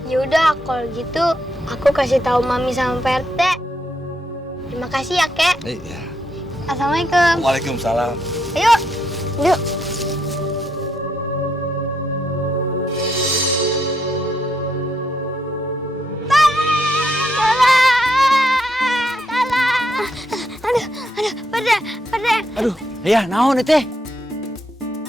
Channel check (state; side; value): normal; both; correlation 0.77